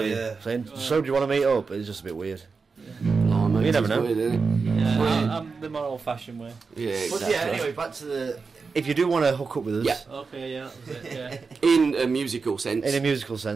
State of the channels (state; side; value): quieter; left; 4.8 dB